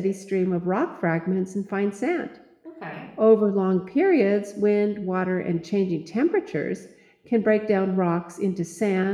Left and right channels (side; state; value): both; identical; correlation 1.00